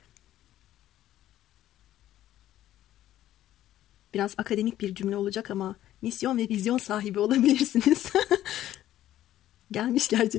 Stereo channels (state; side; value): quieter; right; 13.0 dB